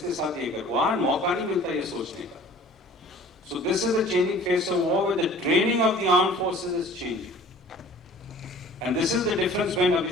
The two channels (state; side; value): normal; both; correlation 0.48